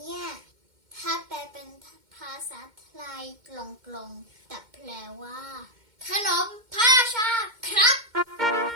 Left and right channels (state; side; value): late; left; 2.1 ms